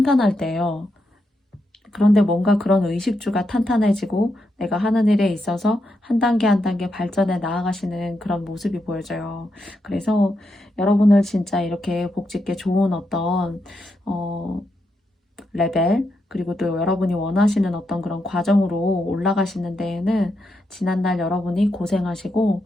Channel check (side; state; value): both; normal; correlation 0.83